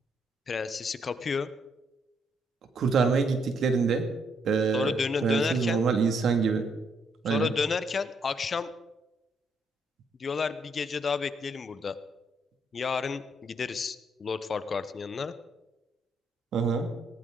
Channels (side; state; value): both; normal; correlation 0.73